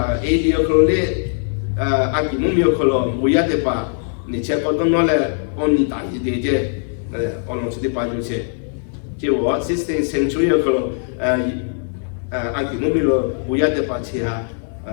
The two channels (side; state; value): right; silent; digital silence